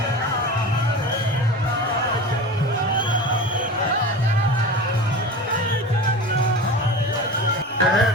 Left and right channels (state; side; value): normal; both; correlation 0.31